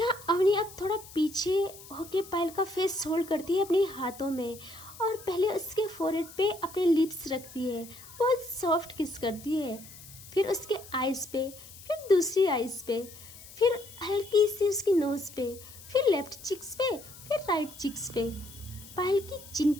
अवनी अब थोड़ा पीछे होके पायल का फेस होल्ड करती है अपने हाथों में, और पहले उसके फोरहेड पे अपने लिप्स रखती है, बहुत सॉफ्ट किस करती है, फिर उसके आइज़ पे, फिर दूसरी आइज़ पे, फिर हल्की सी उसकी नोज़ पे, फिर लेफ्ट चिक्स पे, फिर राइट चिक्स पे, पायल की चिन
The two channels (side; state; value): left; noise; hiss, 18 dB below the sound